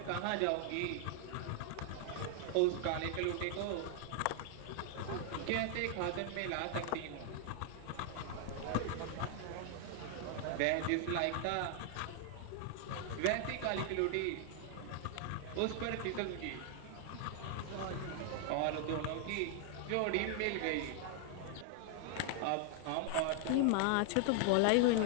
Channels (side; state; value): both; different; correlation 0.00